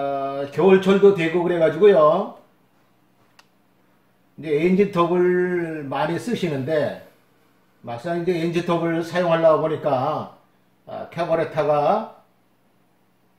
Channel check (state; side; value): identical; both; correlation 1.00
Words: 겨울철도 되고 그래가지고요. 이제 엔진톱을 많이 쓰시는데, 막상 이제 엔진톱을 사용하려고 보니까, 카부레터가